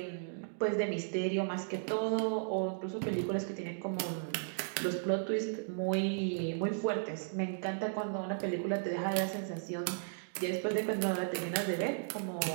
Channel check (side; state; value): left; silent; digital silence